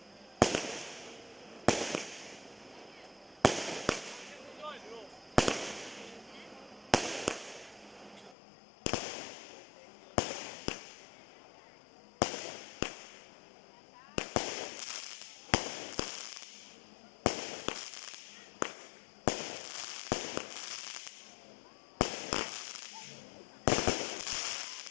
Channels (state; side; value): drops out; right; at 8.3 s